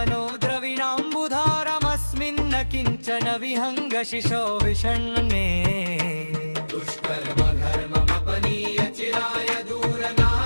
द्रविणाम्बुधारमस्मिन्न किञ्चन विहङ्गशिशो विषण्णे दुष्कर्मघर्ममपनीय चिराय दूर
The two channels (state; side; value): inverted; both; correlation -1.00